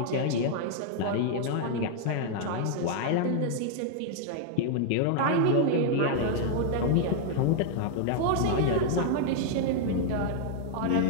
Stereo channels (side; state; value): both; different; correlation -0.01